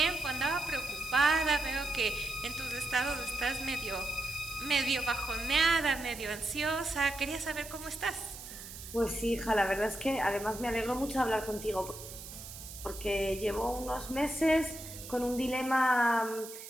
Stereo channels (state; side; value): noise; right; hiss, 13 dB below the sound